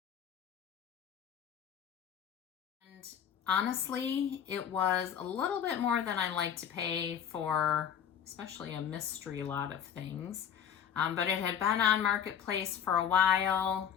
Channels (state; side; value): quieter; right; 8.8 dB